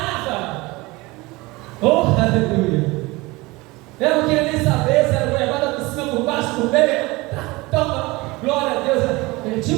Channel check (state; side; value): quieter; left; 22.4 dB